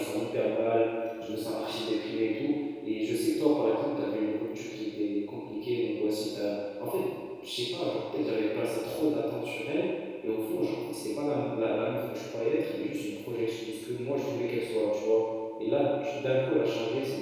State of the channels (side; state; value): both; identical; correlation 1.00